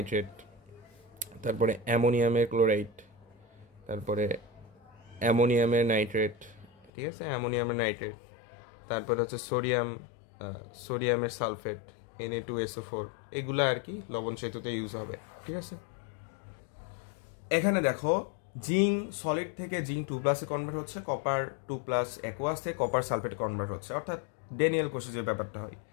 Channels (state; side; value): drops out; right; at 6.9 s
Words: তারপরে অ্যামোনিয়ামের ক্লোরাইড, তারপরে অ্যামোনিয়ামের নাইট্রেট, ঠিক আছে, অ্যামোনিয়ামের নাইট্রেট, তারপরে হচ্ছে সোডিয়ামের সালফেট, Na2SO4, এগুলো আর কি লবণ সেতুতে ইউজ হবে, ঠিক আছে। এখানে দেখো, জিঙ্ক সলিড থেকে জিঙ্ক 2+ কনভার্ট হচ্ছে, কপার 2+ অ্যাকোয়াস থেকে কপার সালফেটে কনভার্ট হচ্ছে, অর্থাৎ ড্যানিয়েল কোষে যে ব্যাপারটা হয়।